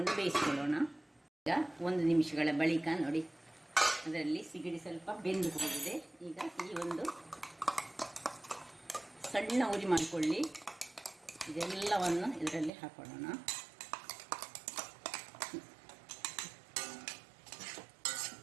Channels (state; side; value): drops out; left; at 12.7 s